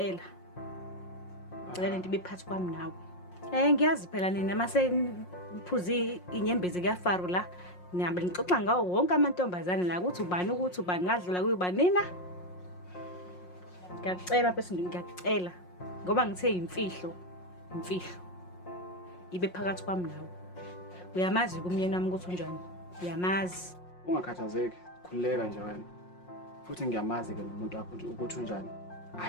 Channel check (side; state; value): right; late; 5.6 ms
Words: Cela lento ibephathi kwami nawe. Ngiyazi phela nina mase niphuzi inyembezi kuyafaro la. Nihambe nixoxa ngawo wonke amantombazane la ukuthi ubani ngadlula kuyiba nina. Ngiyacela bese ngiyacela ngoba ngithe imfihlo. Ibe phakathi kwami nawe. Uyamazi kumyeni wami ukuthi unjani? Uyamazi. Ungakhathazeki, khuleka nje wena. Futhi ngiyamazi ke umuntu wakho ukuthi unjani.